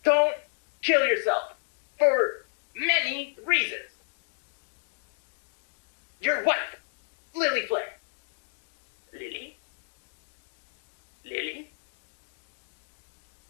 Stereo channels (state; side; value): silent; right; 56 dB below the other